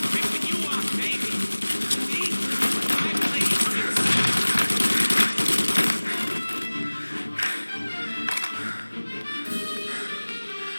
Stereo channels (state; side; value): inverted; both; correlation -1.00